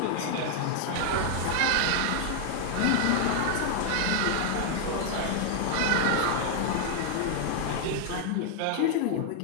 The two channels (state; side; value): different; both; correlation 0.00